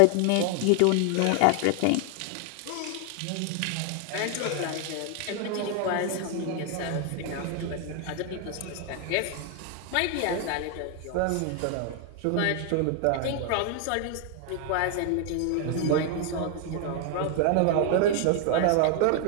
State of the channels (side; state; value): both; different; correlation 0.00